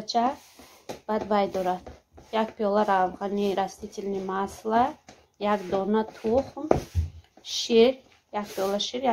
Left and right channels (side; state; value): both; identical; correlation 1.00